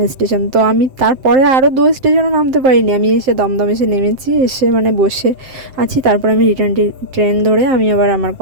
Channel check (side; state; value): left; late; 7.6 ms